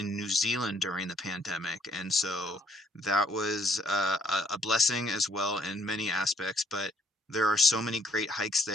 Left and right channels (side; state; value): both; normal; correlation 0.65